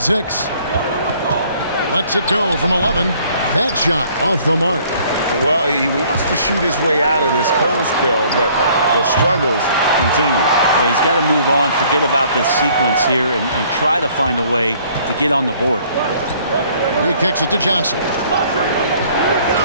6. Lets it go from 11. That shot off the mark. Well, he wants to shoot his way out of this cold spell, but the struggles continue. Yeah, he's got to move on, forget about this sequence here, and try to find a way to get on the board. He kicks it to Johnson.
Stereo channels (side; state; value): both; inverted; correlation -0.59